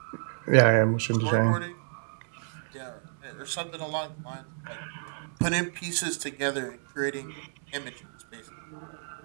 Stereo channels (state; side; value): silent; left; digital silence